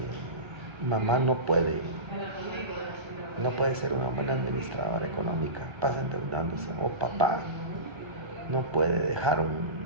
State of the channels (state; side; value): late; left; 1.3 ms